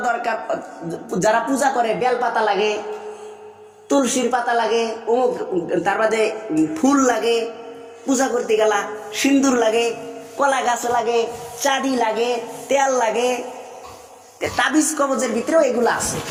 দরকার, যারা পূজা করে বেল পাতা লাগে, তুলসীর পাতা লাগে, তার বাদে ফুল লাগে, পূজা করতে গেলা সিন্দুর লাগে, কলা গাছ লাগে, চাঁদি লাগে, তেল লাগে, তাবিজ কবজের ভিতরেও এগুলা আছে,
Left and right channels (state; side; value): identical; both; correlation 1.00